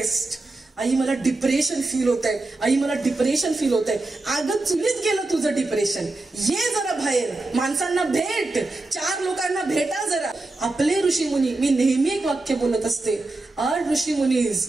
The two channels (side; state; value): left; quieter; 3.1 dB